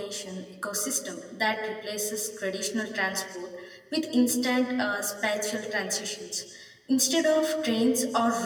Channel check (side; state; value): both; identical; correlation 1.00